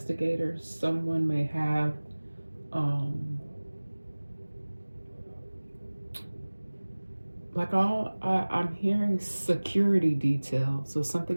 someone may have I'm hearing security detail. So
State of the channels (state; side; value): inverted; both; correlation -1.00